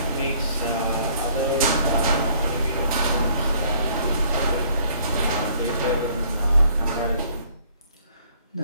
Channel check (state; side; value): inverted; both; correlation -0.60